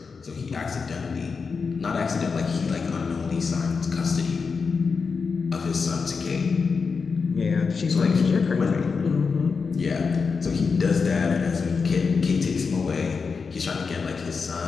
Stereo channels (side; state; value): right; quieter; 5.1 dB